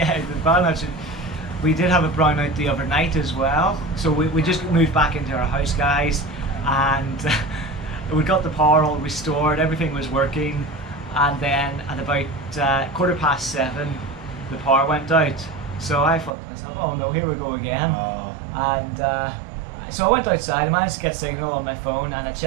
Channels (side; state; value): left; drops out; at 16.3 s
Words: the brownouts. We did have a brownout the other night as well. So we just moved back into our house, guys, and we got the power all restored. Everything was working, and then at about 7:15, the power went out. So I thought to myself, oh no, here we go again. And so I went outside, I managed to get signal on my phone, and I